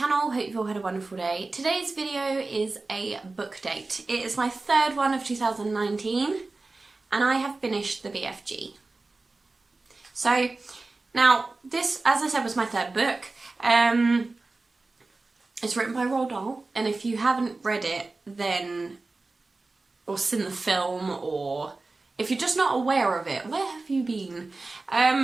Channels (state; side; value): quieter; left; 3.4 dB